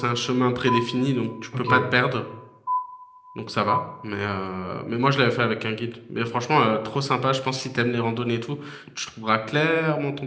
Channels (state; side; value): identical; both; correlation 1.00